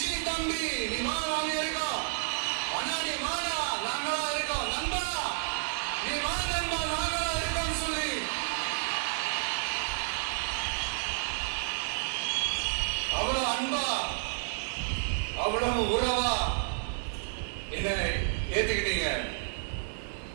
தம்பி நீ வா, நாங்க இருக்கோம். அண்ணா நீ வாடா, நாங்களா இருக்கோம். நண்பா நீ வா நண்பா, நாங்களா இருக்கோம் சொல்லி அவ்வளவு அன்பா, அவ்வளவு உறவா என்ன ஏத்துக்கிட்டீங்க.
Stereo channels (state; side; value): silent; left; 57 dB below the other